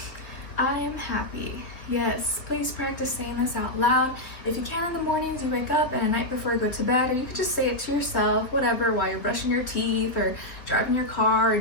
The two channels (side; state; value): right; late; 3.3 ms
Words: I am happy. Yes, please practice saying this out loud. If you can in the mornings you wake up and at night before you go to bed, or you could just say it to yourself, whatever, while you're brushing your teeth or driving your car or